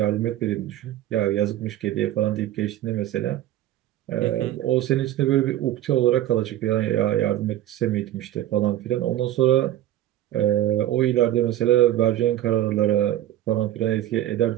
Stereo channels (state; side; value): quieter; left; 13.2 dB